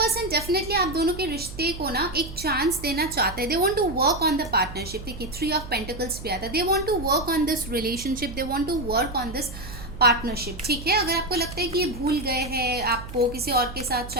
डेफिनेटली आप दोनों के रिश्ते को ना एक चांस देना चाहते हैं। They want to work on the partnership. देखिए 3 ऑफ पेंटिकल्स भी आता है। They want to work on this relationship, they want to work on this partnership. ठीक है, अगर आपको लगता है कि ये भूल गए हैं आपको, किसी और के साथ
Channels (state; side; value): noise; right; hum, 12 dB below the sound